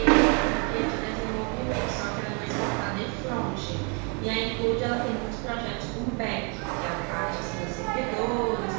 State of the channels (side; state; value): left; quieter; 35.6 dB